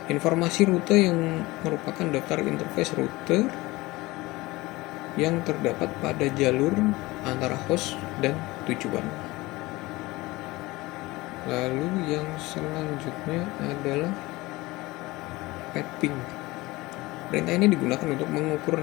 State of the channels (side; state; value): right; quieter; 20.8 dB